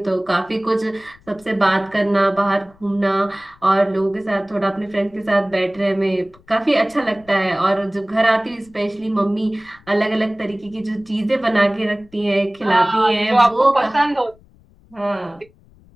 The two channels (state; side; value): noise; left; rumble, 28 dB below the sound